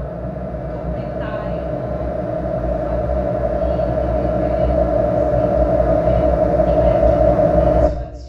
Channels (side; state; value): both; identical; correlation 1.00